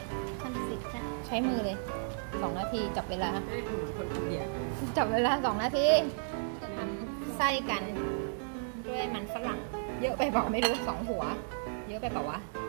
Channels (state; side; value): silent; left; digital silence